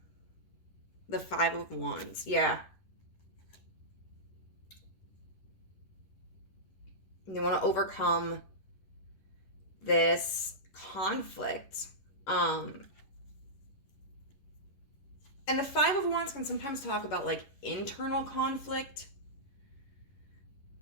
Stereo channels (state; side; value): late; right; 11 ms